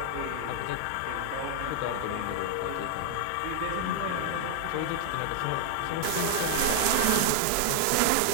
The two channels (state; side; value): different; both; correlation 0.00